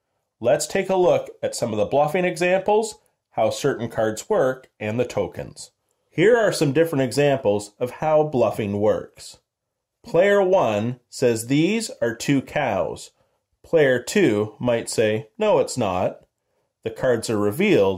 Let's take a look at some of the bluffing examples, how certain cards work, and the tokens. Here are some different examples of how bluffing works. Player 1 says these are 2 cows. Player 2 might say, no, it's not. The cards are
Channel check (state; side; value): identical; both; correlation 1.00